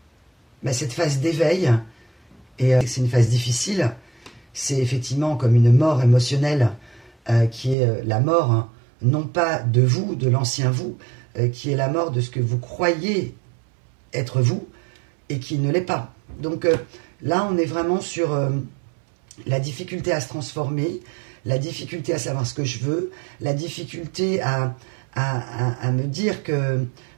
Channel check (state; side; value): drops out; left; at 7.8 s